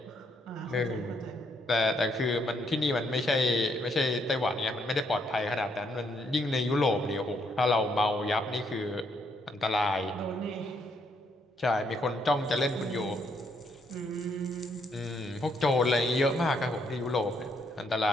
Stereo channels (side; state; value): both; normal; correlation 0.73